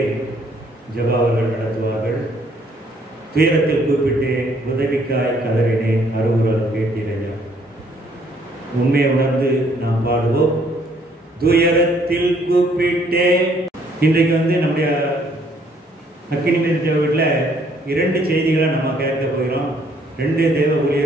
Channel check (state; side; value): normal; both; correlation 0.65